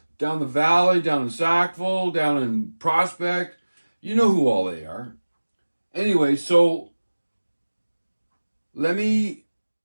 down the valley, down in Sackville, down in Prospect. You know who all they are. Anyway, so there's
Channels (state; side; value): inverted; both; correlation -1.00